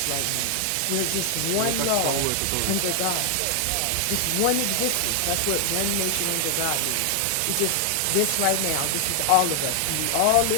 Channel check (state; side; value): different; both; correlation 0.00